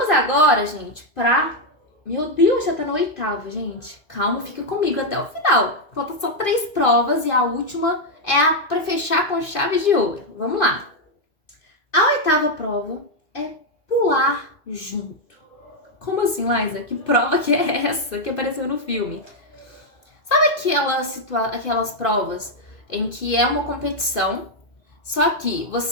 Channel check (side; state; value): right; late; 2.5 ms